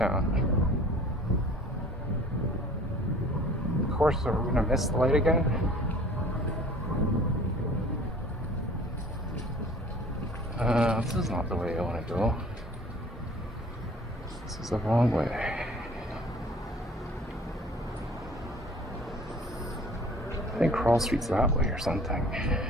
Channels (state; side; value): normal; both; correlation 0.49